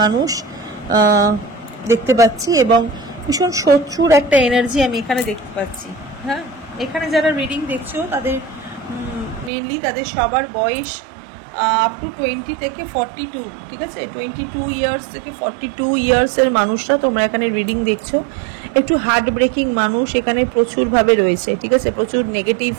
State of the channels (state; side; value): drops out; left; at 9.5 s